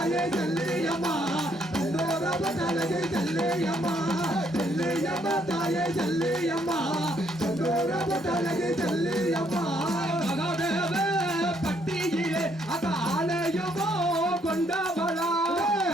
செல்லியம்மா செந்தூர பொட்டலகி செல்லியம்மா செல்லியம்மா தாயே செல்லியம்மா செந்தூர பொட்டலகி செல்லியம்மா மகாதேவ பட்டியிலே அத ஆலயமோ கொண்டவளா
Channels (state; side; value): normal; both; correlation 0.70